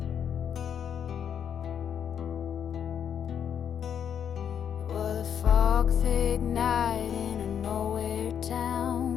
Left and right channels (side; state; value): right; quieter; 8.4 dB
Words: Thick night in a nowhere